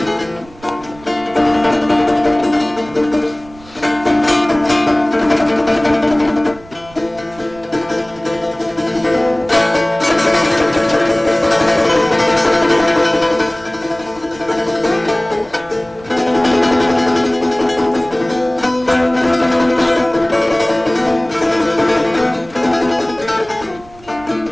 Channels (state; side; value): noise; right; rumble, 23 dB below the sound